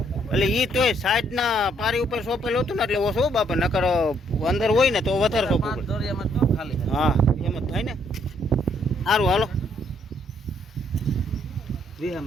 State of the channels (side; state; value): both; normal; correlation 0.69